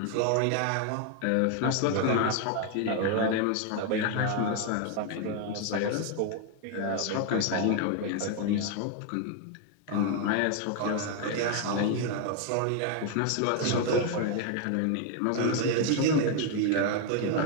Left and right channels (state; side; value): different; both; correlation 0.01